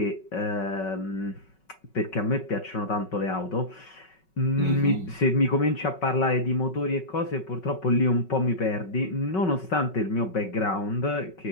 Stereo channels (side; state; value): right; late; 5.3 ms